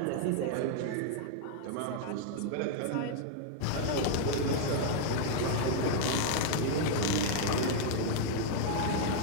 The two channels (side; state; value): both; different; correlation -0.01